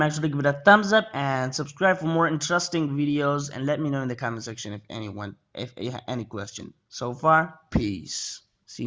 sure to give it a thumbs up and subscribe for more interesting videos, and let me know in the comment section if you have any question. So far, peace. See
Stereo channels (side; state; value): both; identical; correlation 1.00